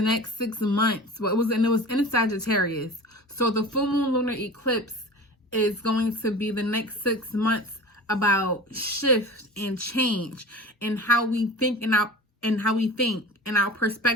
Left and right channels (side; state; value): both; normal; correlation 0.36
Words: next 6 months. Well, it was in Sagittarius. So the full moon lunar eclipse is going to be the next 6 months about shift and change and how we think and our